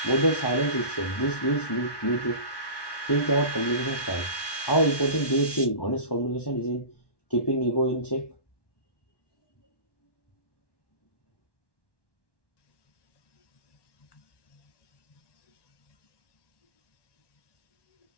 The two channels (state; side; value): late; right; 1.1 ms